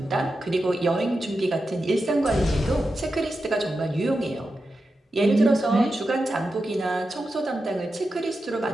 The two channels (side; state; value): both; normal; correlation 0.90